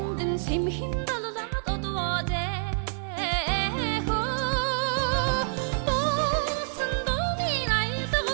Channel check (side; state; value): left; silent; digital silence